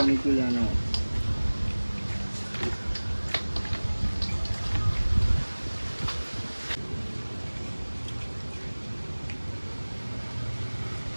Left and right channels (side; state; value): both; inverted; correlation -1.00